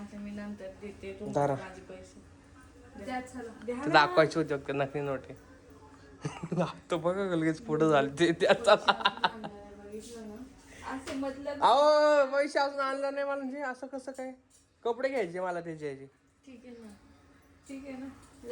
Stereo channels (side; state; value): both; identical; correlation 1.00